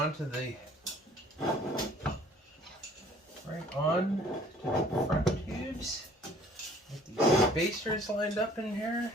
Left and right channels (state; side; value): normal; both; correlation 0.54